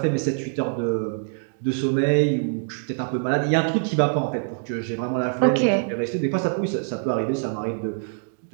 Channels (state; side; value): silent; left; 62 dB below the other